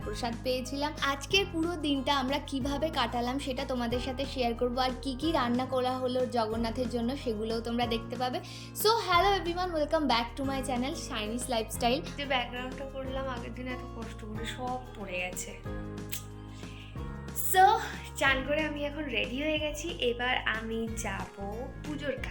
প্রসাদ পেয়েছিলাম। আজকের পুরো দিনটা আমরা কিভাবে কাটালাম সেটা তোমাদের সাথে শেয়ার করবো। আর কি কি রান্না করা হলো জগন্নাথের জন্য সেগুলোও তোমরা দেখতে পাবে। So hello everyone, welcome back to my channel Shiny's Lifestyle. যে ব্যাকগ্রাউন্ডটা করলাম আগের দিন এত কষ্ট করে সব পড়ে গেছে। সো চান করে আমি এখন রেডি হয়ে গেছি। এবার আমি যাব পুজোর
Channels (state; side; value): identical; both; correlation 1.00